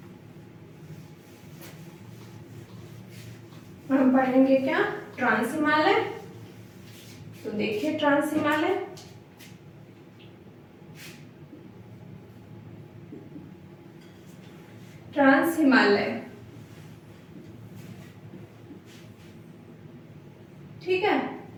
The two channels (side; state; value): both; identical; correlation 1.00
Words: हम पढ़ेंगे क्या ट्रांस हिमालय। तो देखिए ट्रांस हिमालय, ट्रांस हिमालय, ठीक है।